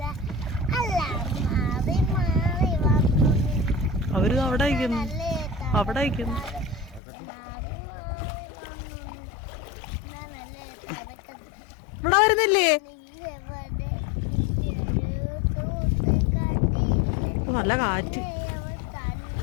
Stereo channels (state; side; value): drops out; right; at 7.0 s